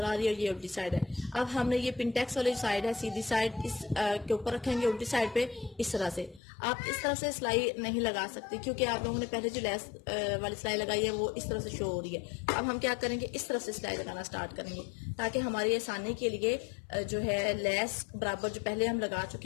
आ रही है, और ये उल्टी साइड है। अब हमने ये पिनटेक्स वाली साइड है, सीधी साइड इस के ऊपर रखेंगे, उल्टी साइड पे इस तरह से। आप इस तरह से सिलाई नहीं लगा सकती क्योंकि आप लोगों ने पहले जो लेस वाली सिलाई लगाई है वो इस तरह से शो हो रही है। अब हम क्या करेंगे, इस तरह से सिलाई लगाना स्टार्ट करेंगे ताकि हमारी आसानी के लिए जो है लेस बराबर जो पहले हम लगा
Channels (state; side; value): drops out; right; at 6.4 s